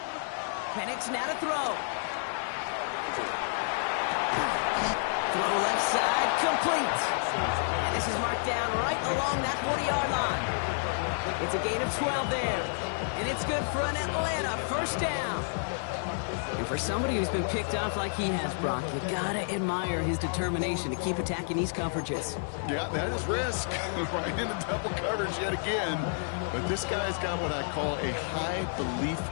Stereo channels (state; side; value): silent; right; digital silence